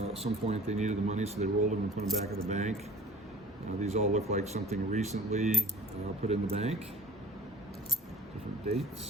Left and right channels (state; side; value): normal; both; correlation 0.45